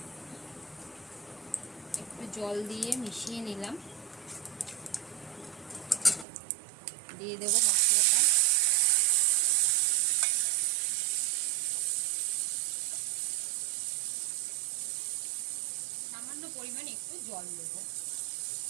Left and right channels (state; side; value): drops out; left; at 6.2 s